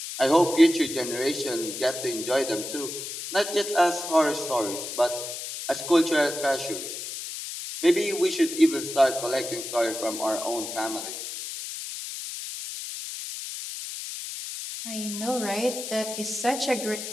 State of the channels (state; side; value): noise; left; hiss, 7 dB below the sound